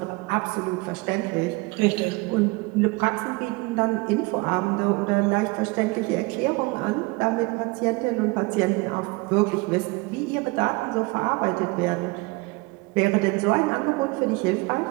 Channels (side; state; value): left; quieter; 25.6 dB